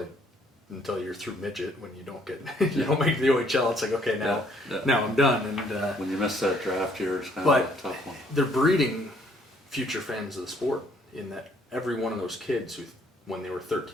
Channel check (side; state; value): both; normal; correlation 0.64